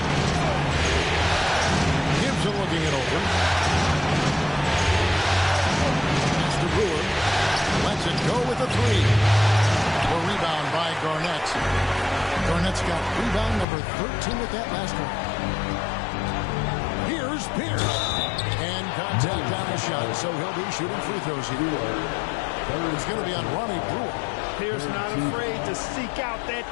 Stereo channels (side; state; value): right; drops out; at 13.7 s